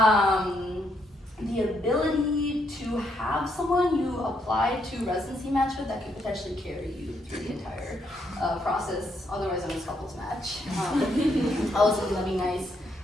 the ability to have someone you apply to residency match with that could potentially carry you through the entire process, otherwise known as couples match. Also, that'd be nice.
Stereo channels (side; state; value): both; normal; correlation 0.75